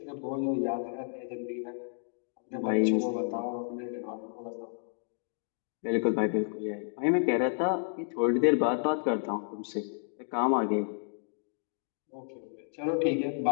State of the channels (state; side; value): silent; right; digital silence